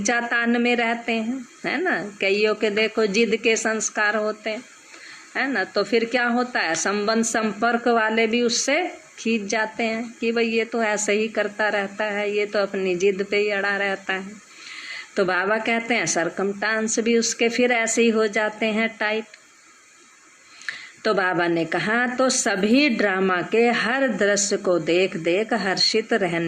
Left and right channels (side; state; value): both; identical; correlation 1.00